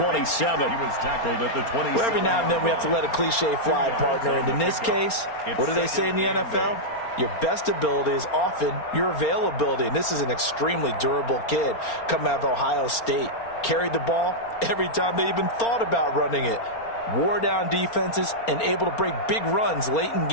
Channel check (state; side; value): late; right; 4.3 ms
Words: He was tackled at the 27. Well, every now and then we have to let a cliche fly, partner. And in this case, what do they say in the NFL? Your best ability is often your availability. And this is an extremely durable kid coming out of Ohio State. Carried the ball every time they even thought about running it. Wore down defenses and able to break big runs late in